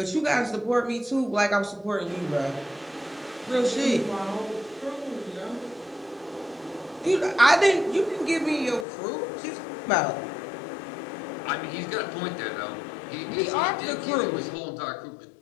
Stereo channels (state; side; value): drops out; right; at 8.8 s